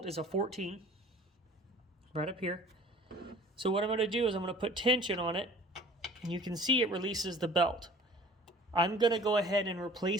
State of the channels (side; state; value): both; normal; correlation 0.47